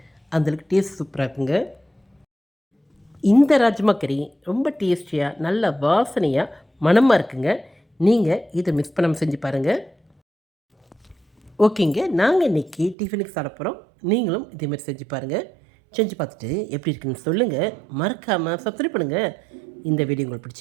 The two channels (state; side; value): drops out; left; at 13.0 s